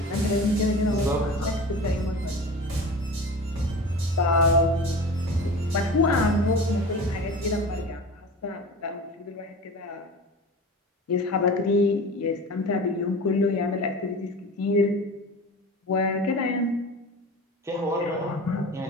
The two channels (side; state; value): both; normal; correlation 0.34